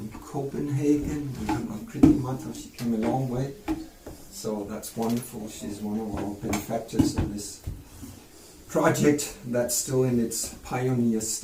Copenhagen. We have Kriti Mata, she came a long way. So that's wonderful. She's one of our benefactors of this project that's still in its pioneer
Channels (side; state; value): both; identical; correlation 1.00